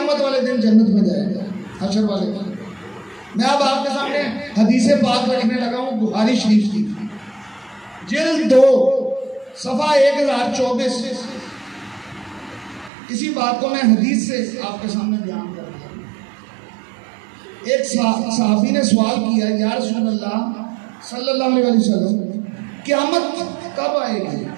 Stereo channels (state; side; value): drops out; left; at 12.9 s